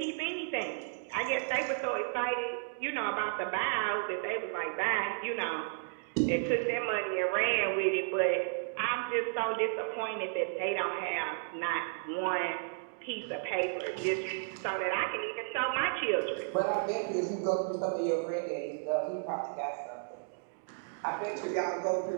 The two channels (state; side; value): silent; left; digital silence